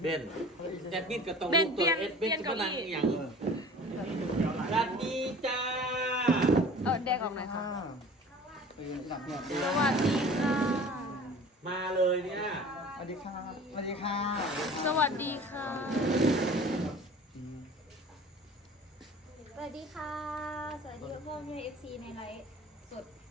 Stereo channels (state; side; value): normal; both; correlation 0.44